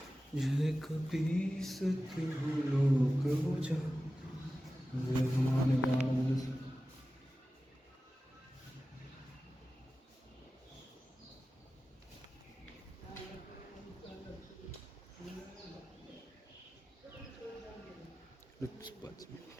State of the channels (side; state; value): both; normal; correlation 0.95